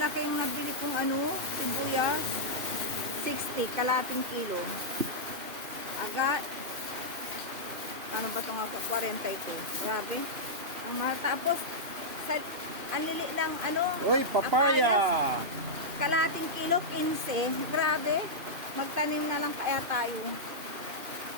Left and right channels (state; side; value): late; left; 2.9 ms